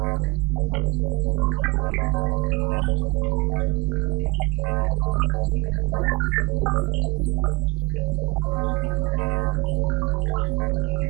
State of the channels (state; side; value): quieter; left; 26.9 dB